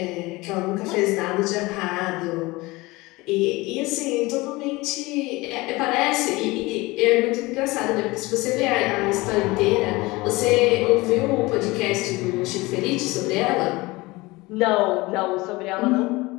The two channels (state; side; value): quieter; right; 21.9 dB